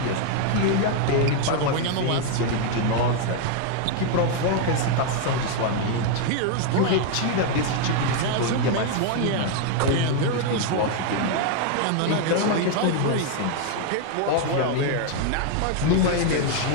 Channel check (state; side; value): different; both; correlation 0.00